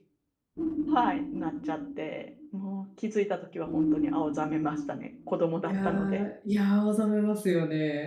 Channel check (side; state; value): both; identical; correlation 1.00